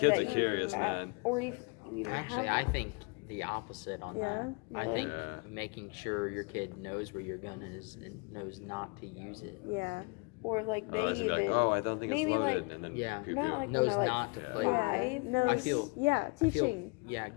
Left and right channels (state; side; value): quieter; right; 31.8 dB